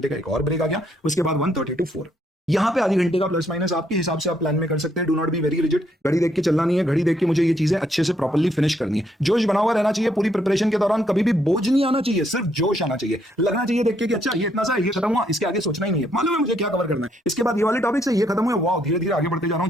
का एक और ब्रेक आ गया, उसके बाद 1:30 to 4। यहाँ पे आधी घंटे का प्लस माइनस आपके हिसाब से आप प्लान में कर सकते हैं। Do not be very rigid, घड़ी देख के चलना नहीं है, घड़ी देख के मुझे ये चीजें अच्छे से प्रॉपर्ली फिनिश करनी है। जोश बना हुआ रहना चाहिए पूरी प्रिपरेशन के दौरान, कभी भी बोझ नहीं आना चाहिए, सिर्फ जोश आना चाहिए। लगना चाहिए देख के कि अच्छा ये इतना सा ये खत्म हुआ, इसके आगे सोचना ही नहीं है, मालूम है मुझे क्या कवर करना है। इसके बाद ये वाले टॉपिक से ये खत्म हुए, वाह धीरे धीरे आगे बढ़ते जा रहा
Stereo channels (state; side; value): normal; both; correlation 0.72